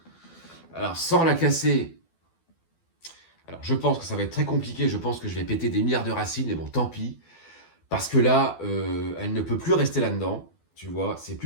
Alors, sans la casser, alors je pense que ça va être très compliqué. Je pense que je vais péter des milliards de racines, mais bon, tant pis. Parce que là, elle ne peut plus rester là-dedans. Tu vois, c'est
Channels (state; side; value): late; right; 12 ms